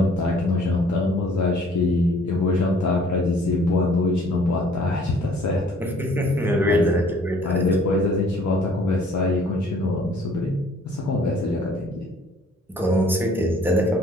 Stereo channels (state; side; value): normal; both; correlation 0.56